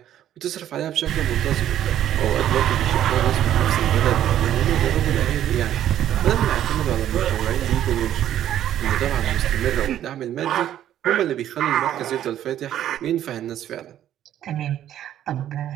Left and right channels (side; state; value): left; quieter; 11.4 dB